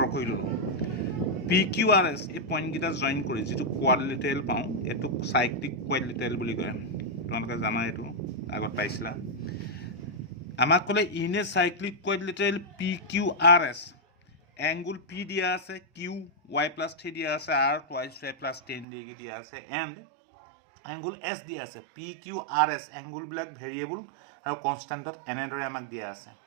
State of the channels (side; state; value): left; drops out; at 18.9 s